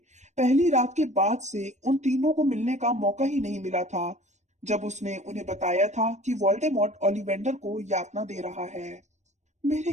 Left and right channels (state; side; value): late; left; 0.34 ms